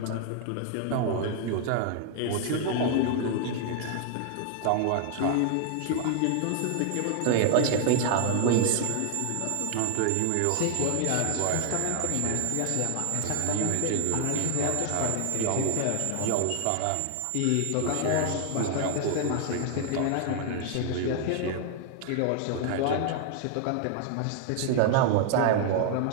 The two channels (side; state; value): both; different; correlation 0.00